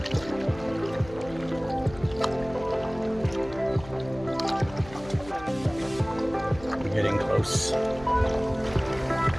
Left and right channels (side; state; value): left; noise; hum, 17 dB below the sound